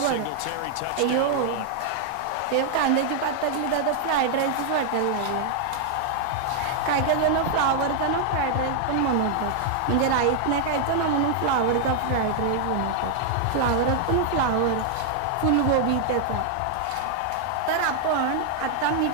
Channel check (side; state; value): both; different; correlation -0.01